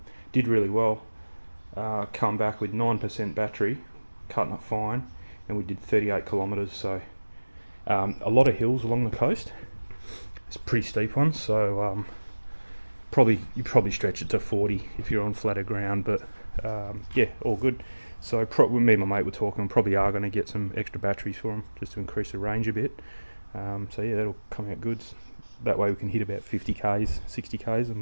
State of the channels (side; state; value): both; inverted; correlation -1.00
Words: did really well. Come back with 9% battery, cutting it fine, and we did 38 kilometres. So a lot of hills along the coast. It's a pretty steep one, so you probably stretch it to 40 if you're on flatter ground, but yeah, all good. So me and my mate were talking, probably are going to get some extra batteries for them just to increase the range a bit. So yeah, that'll come out good. That way we can hit about 50 k's, 60 k's,